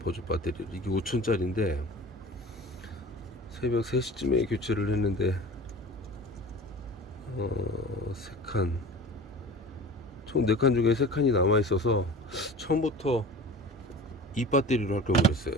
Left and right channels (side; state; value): both; normal; correlation 0.38